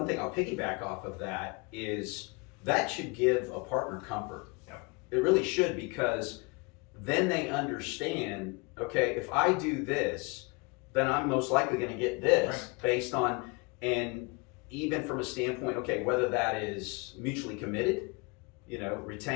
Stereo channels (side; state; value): right; quieter; 28.9 dB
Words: thing I'll piggyback off of that is that should give a partner comfort. Yep. It really should, because then they understand, okay, if I do this, then I'm most likely going to get this, right. Based on, and even from a standpoint, okay, whether that is mutually committed,